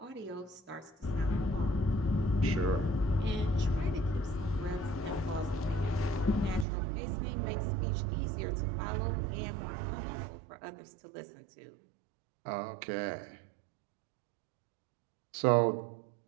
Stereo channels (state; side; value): drops out; left; at 6.7 s